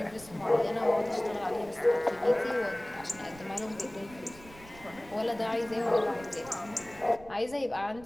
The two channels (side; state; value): right; noise; rumble, 20 dB below the sound